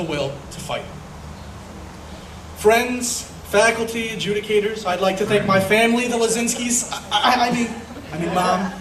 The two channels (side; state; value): both; identical; correlation 1.00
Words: will to fight. Friends, faculty, adjudicators, I'd like to thank my family, the Lazinskis. I mean Mom,